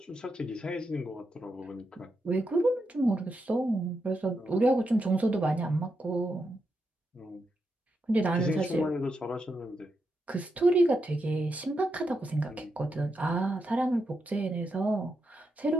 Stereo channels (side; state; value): both; normal; correlation 0.84